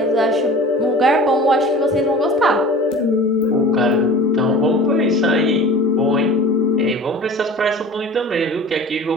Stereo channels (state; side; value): normal; both; correlation 0.40